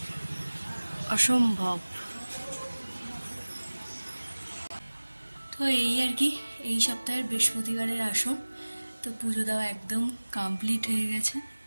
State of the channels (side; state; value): both; inverted; correlation -1.00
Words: অসম্ভব। তো এই আর কি এই সপ্তাহের বৃহস্পতিবারের আসন। তো পুজো দেওয়া একদম কমপ্লিট হয়ে গেছে।